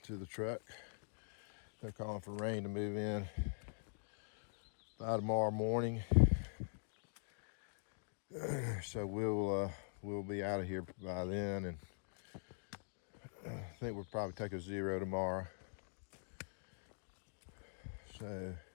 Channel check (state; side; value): silent; right; digital silence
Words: to the truck. They're calling for rain to move in by tomorrow morning, so we'll be out of here by then, and I think we'll probably take a 0 tomorrow. So